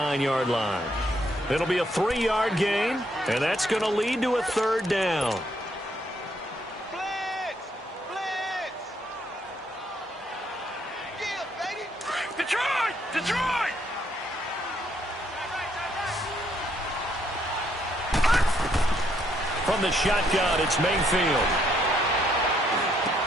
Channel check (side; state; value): both; normal; correlation 0.71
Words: line. It'll be a 3-yard gain, and that's going to lead to a third down. Blitz! Blitz! Yeah, baby! Detroit! Detroit! From the shotgun, it's Mayfield.